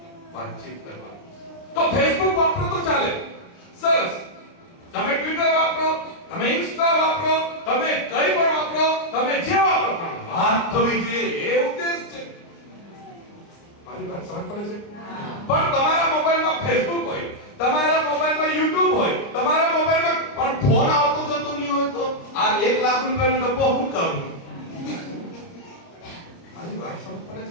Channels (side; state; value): right; late; 29 ms